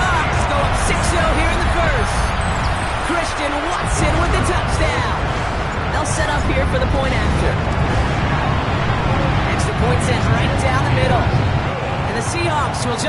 go up 6-0 here in the first. Christian Watson with the touchdown. They'll set up here for the point after. Extra point sent right down the middle. And the Seahawks will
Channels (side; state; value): both; identical; correlation 1.00